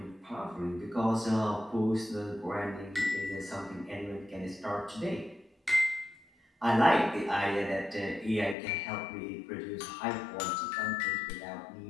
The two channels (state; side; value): drops out; right; at 8.6 s